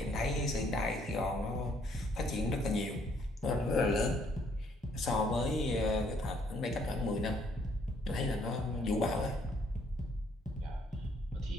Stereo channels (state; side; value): normal; both; correlation 0.67